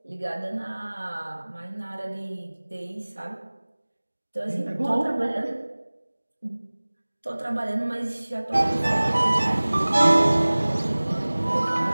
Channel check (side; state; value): both; inverted; correlation -1.00